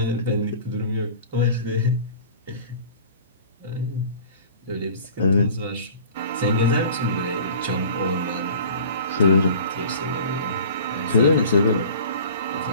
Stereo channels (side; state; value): both; inverted; correlation -0.43